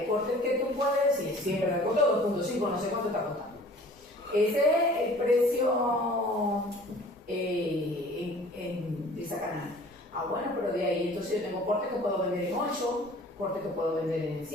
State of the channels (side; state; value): both; normal; correlation 0.48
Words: corte que tú puedes decir, siempre te costó 2.5, no sé cuánto está costando. Ese es el precio de esa canal. Ah, bueno, pero de ahí entonces yo tengo cortes que puedo vender en 8, cortes que puedo vender en